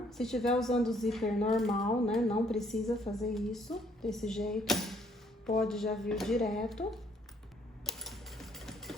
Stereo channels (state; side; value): normal; both; correlation 0.65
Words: Se estiver usando o zíper normal, né, não precisa fazer isso desse jeito. Pode já vir direto.